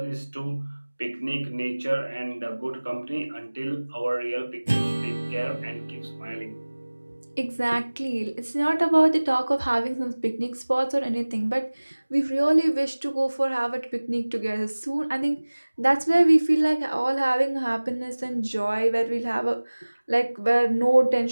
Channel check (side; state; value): both; inverted; correlation -1.00